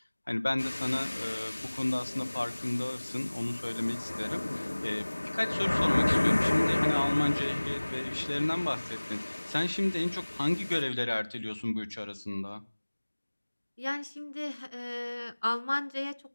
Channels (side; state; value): both; inverted; correlation -1.00